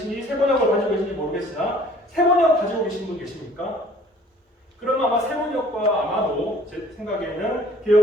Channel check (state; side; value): normal; both; correlation 0.54